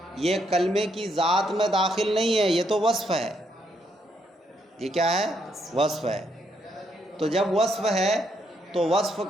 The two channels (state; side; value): normal; both; correlation 0.75